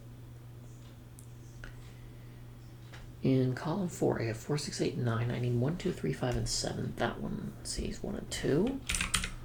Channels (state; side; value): identical; both; correlation 1.00